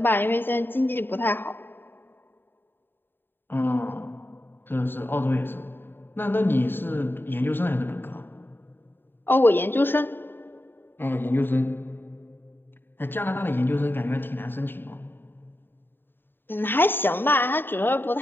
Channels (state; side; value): late; right; 0.097 ms